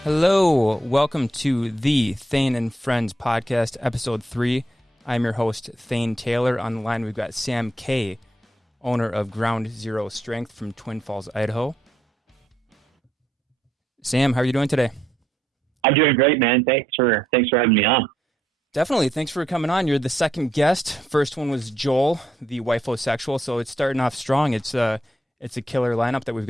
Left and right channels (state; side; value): normal; both; correlation 0.76